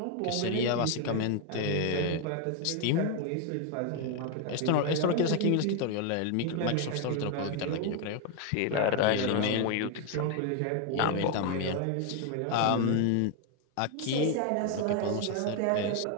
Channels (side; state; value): both; different; correlation 0.01